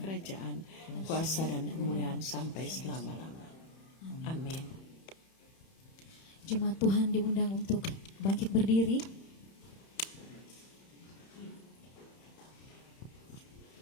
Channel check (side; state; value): right; late; 31 ms